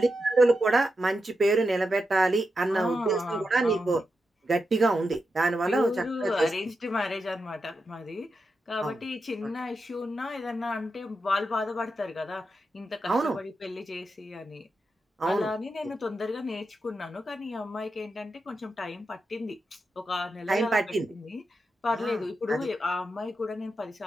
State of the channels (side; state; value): both; normal; correlation 0.87